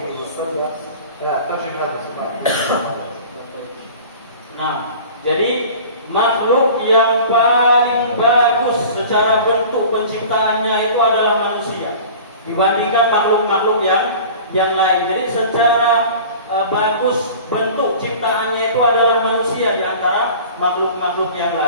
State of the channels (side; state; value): both; inverted; correlation -0.41